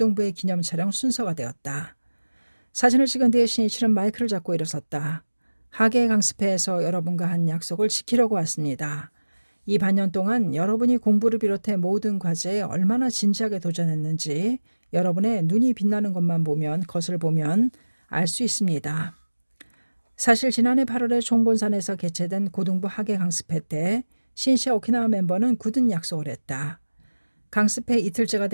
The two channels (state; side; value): inverted; both; correlation -1.00